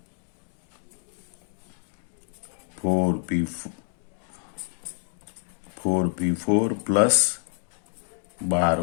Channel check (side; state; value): right; silent; digital silence